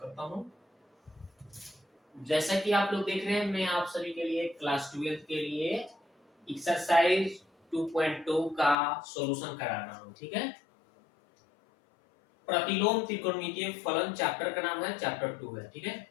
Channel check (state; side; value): drops out; right; at 8.8 s